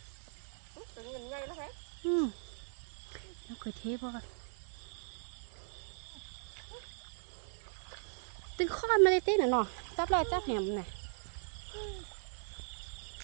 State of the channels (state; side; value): silent; left; 52 dB below the other